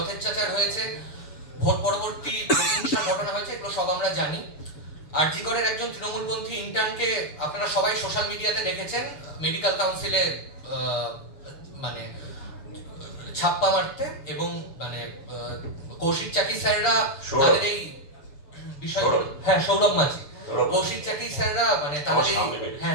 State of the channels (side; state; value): right; late; 7.0 ms